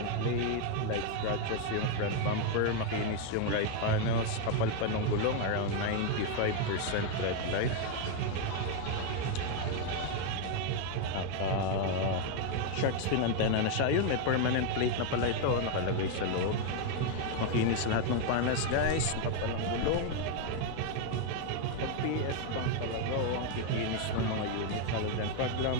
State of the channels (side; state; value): both; different; correlation 0.01